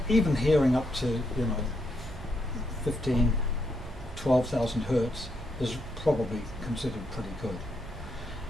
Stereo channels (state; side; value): noise; right; hum, 14 dB below the sound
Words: even hearing up to 15, 12,000 hertz is probably considered pretty good.